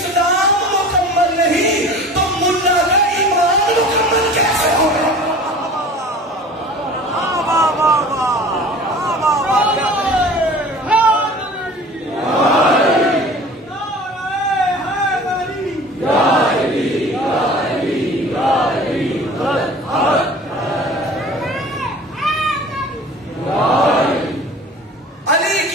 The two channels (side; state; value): both; normal; correlation 0.42